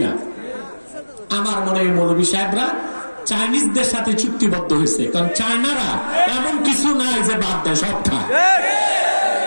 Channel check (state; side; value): inverted; both; correlation -1.00